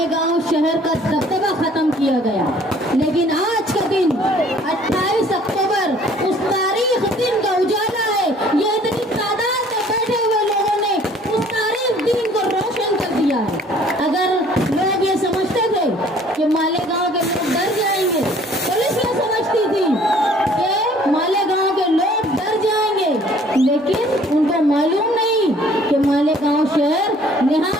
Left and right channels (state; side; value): normal; both; correlation 0.56